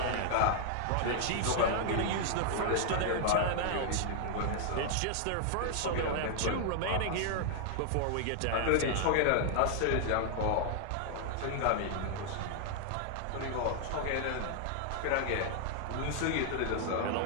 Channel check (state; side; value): different; both; correlation 0.00